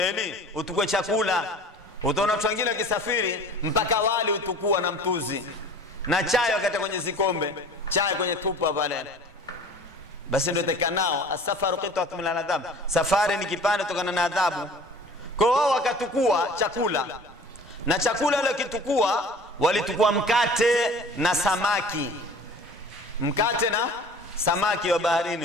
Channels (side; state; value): both; normal; correlation 0.44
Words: utukue chakula. Utaona watu wengine wakisafiri mpaka wali utukua na mtuzi na chai wakati kwenye zikombe, chai kwenye tupa pale. Basi ndio tekanao asafaru qit'atun min al-adhab, safari ni kipande kutokana na adhabu. Kwa hiyo wakatukua chakula, na chakula ile kitukua walitukua mkate na samaki. Mkate na samaki wa